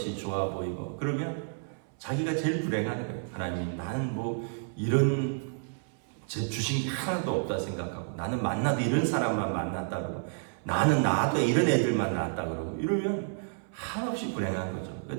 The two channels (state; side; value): silent; left; 58 dB below the other